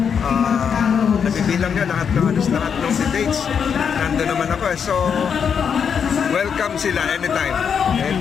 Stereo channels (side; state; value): right; quieter; 7.0 dB